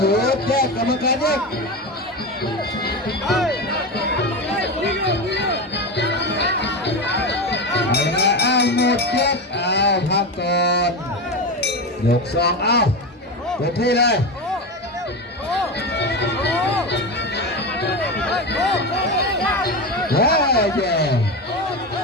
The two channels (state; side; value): normal; both; correlation 0.19